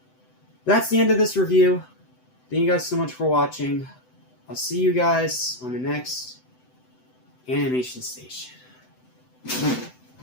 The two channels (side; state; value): right; late; 7.9 ms